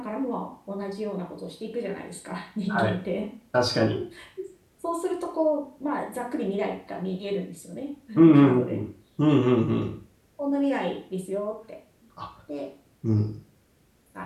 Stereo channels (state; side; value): identical; both; correlation 1.00